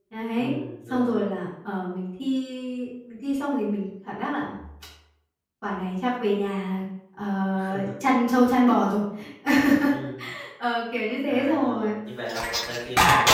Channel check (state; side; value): identical; both; correlation 1.00